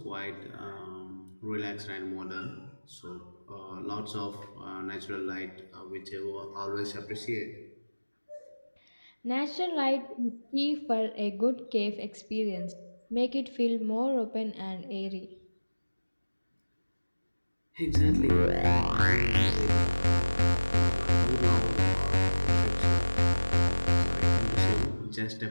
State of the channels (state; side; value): inverted; both; correlation -1.00